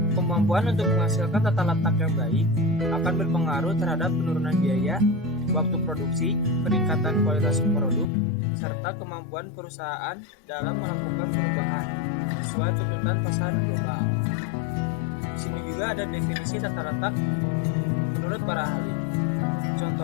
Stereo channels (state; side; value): drops out; right; at 8.1 s